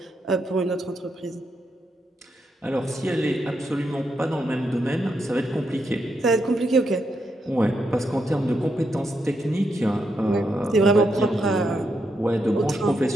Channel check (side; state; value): both; normal; correlation 0.81